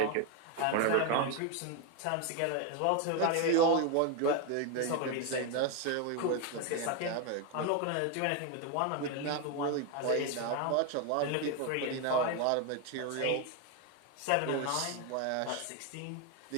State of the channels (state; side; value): different; both; correlation 0.01